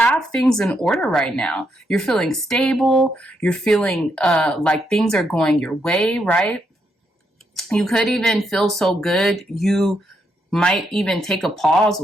things in order right now. You're feeling stable. You're feeling like things are going your way, right? You could even feel so good you might even take a pause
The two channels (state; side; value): normal; both; correlation 0.78